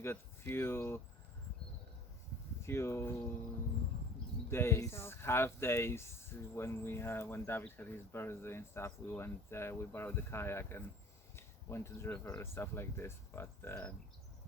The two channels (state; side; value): normal; both; correlation 0.47